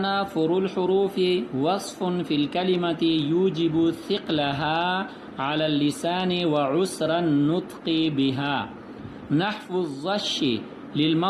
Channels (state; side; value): identical; both; correlation 1.00